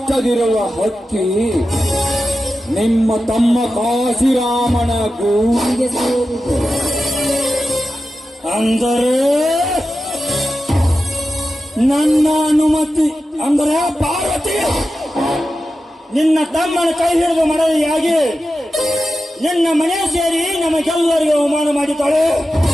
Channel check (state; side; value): normal; both; correlation 0.92